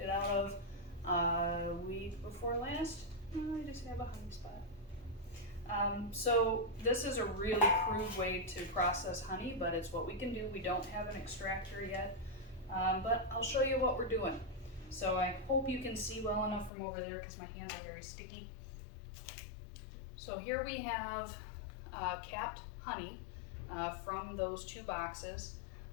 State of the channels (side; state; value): right; drops out; at 16.7 s